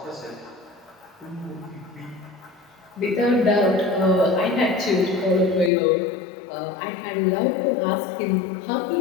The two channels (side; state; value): right; drops out; at 5.7 s